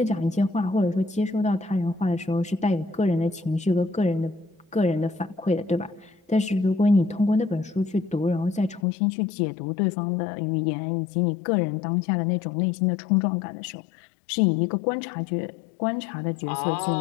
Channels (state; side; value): drops out; right; at 8.8 s